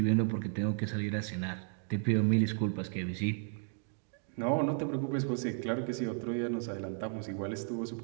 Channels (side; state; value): left; silent; 55 dB below the other